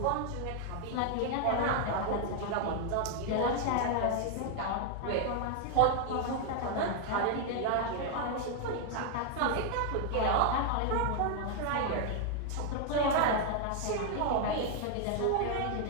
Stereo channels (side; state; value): both; different; correlation 0.00